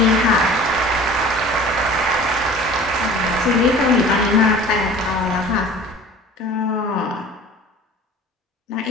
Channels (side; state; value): both; normal; correlation 0.43